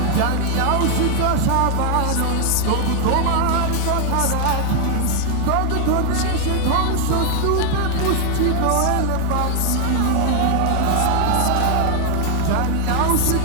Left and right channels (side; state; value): both; different; correlation 0.00